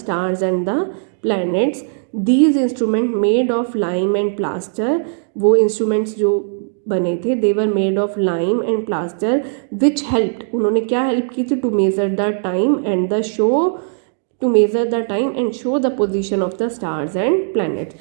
and the planets. These instruments made of lime and plaster, वो instruments जो बने थे, they were made of lime and plaster, which helped, उन्होंने क्या help की थी, to measure the time and the show, to measure the time and show the position of the stars and planets.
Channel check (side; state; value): left; silent; digital silence